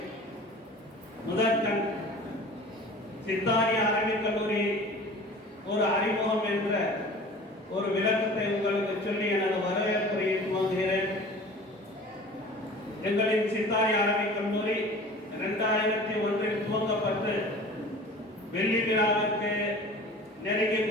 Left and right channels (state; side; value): normal; both; correlation 0.42